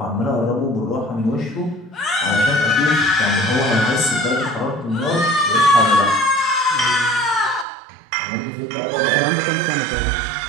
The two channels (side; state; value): left; drops out; at 7.7 s